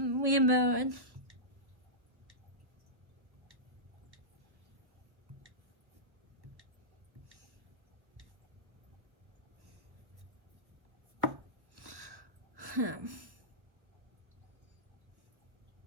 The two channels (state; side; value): late; left; 1.1 ms